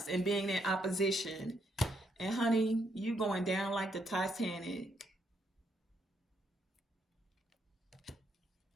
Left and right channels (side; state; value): both; normal; correlation 0.75